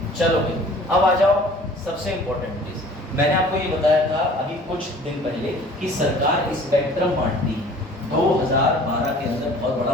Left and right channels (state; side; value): normal; both; correlation 0.49